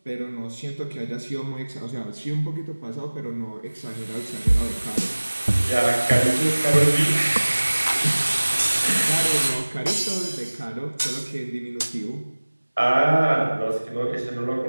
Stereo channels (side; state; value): both; inverted; correlation -1.00